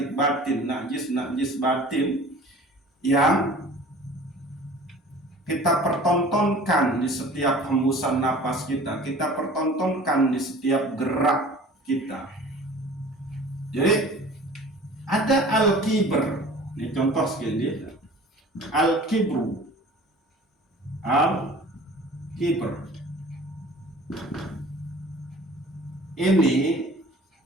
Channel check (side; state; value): both; normal; correlation 0.45